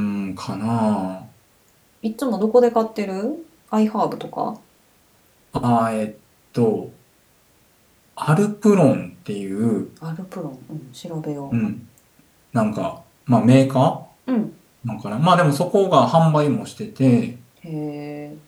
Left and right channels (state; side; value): identical; both; correlation 1.00